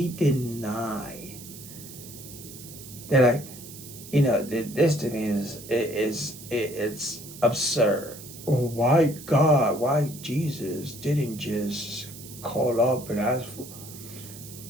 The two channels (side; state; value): right; noise; hiss, 15 dB below the sound